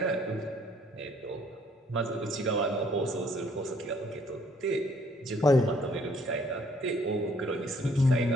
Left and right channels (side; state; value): both; normal; correlation 0.62